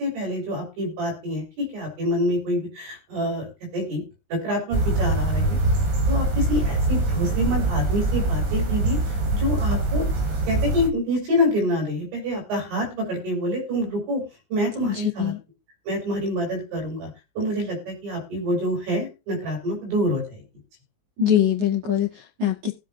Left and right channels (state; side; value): late; left; 19 ms